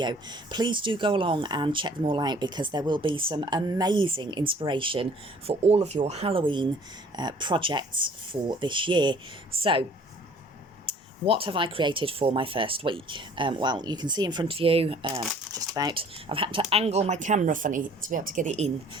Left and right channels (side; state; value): both; normal; correlation 0.54